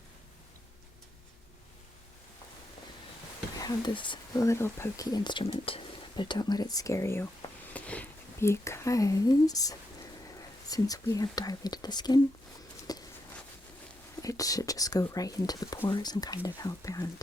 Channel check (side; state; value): both; normal; correlation 0.82